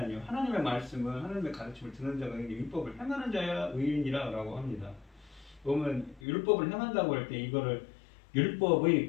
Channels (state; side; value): drops out; right; at 6.2 s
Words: 하나님의 말씀을 하나님의 가르침을 듣는 자가 의인이 율법을 행하는 자야 의인이라 라고 합니다. 보면 율법을 행한다고 할 때 이거를